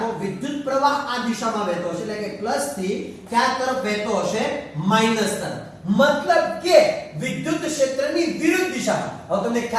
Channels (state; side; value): identical; both; correlation 1.00